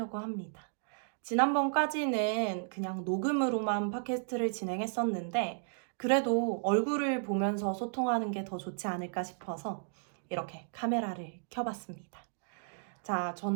합니다. 지난번까지는 그냥 녹음으로만 팟캐스트를 진행했었는데 그래도 얼굴을 보면서 소통하는 게 더 좋지 않을까 싶어서 이렇게 카메라를 켜봤습니다. 자,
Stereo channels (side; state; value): left; silent; digital silence